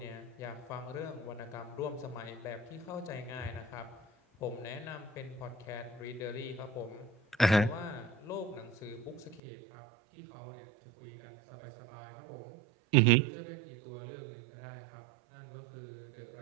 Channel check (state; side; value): drops out; left; at 9.4 s